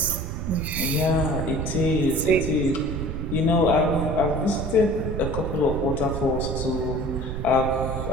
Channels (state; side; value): noise; right; rumble, 5 dB below the sound